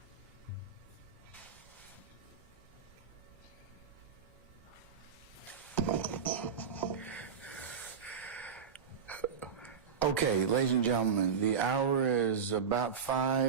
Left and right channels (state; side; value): quieter; left; 6.8 dB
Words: Okay, ladies and gentlemen, the hour is about